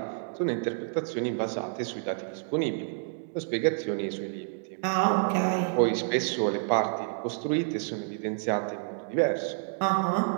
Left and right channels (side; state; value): left; silent; digital silence